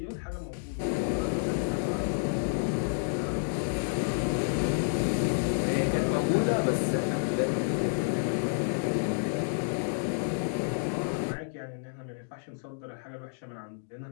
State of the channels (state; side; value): silent; right; digital silence